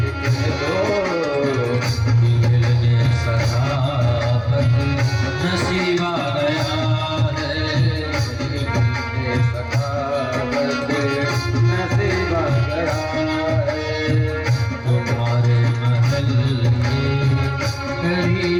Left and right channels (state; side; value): identical; both; correlation 1.00